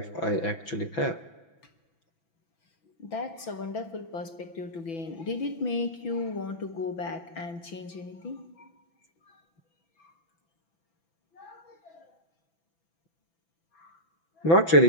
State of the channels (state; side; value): late; right; 6.0 ms